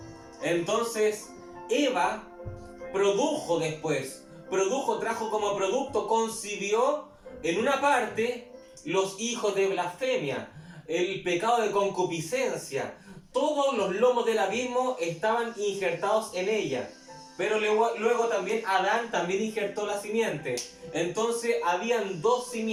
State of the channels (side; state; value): both; identical; correlation 1.00